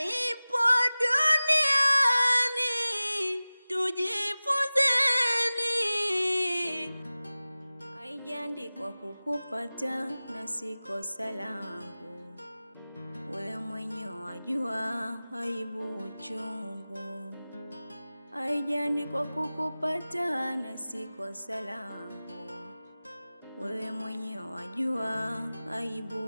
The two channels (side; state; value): both; inverted; correlation -0.97